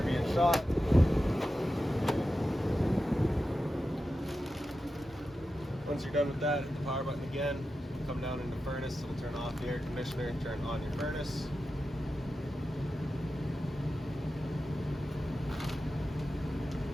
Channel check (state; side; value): normal; both; correlation 0.91